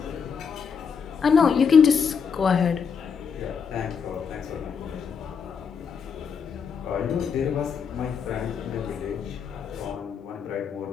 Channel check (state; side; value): quieter; right; 6.4 dB